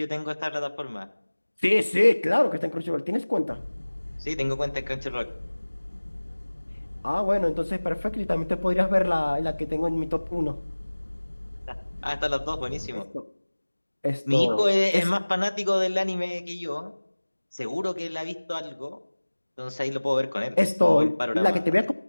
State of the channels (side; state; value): both; inverted; correlation -1.00